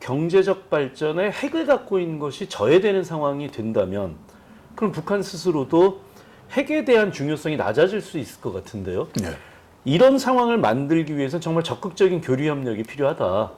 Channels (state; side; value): identical; both; correlation 1.00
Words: 발전에 핵을 갖고 있는 것이 저해되는 상황이 된다면 그럼 북한 스스로도 핵에 대한 중요성이 낮아질 수 있을 것 같은데요. 네. 이런 상황을 만들기 위해서는 정말 적극적인 교류 협력이 필요하다.